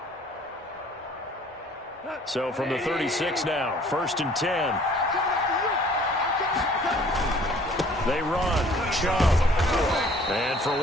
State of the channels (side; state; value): both; normal; correlation 0.55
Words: So from the 36 now, 1st and 10. They run. Chubb. And for